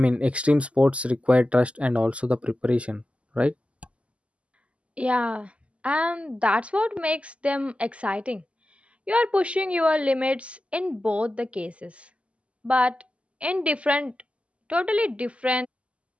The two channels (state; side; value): late; left; 0.059 ms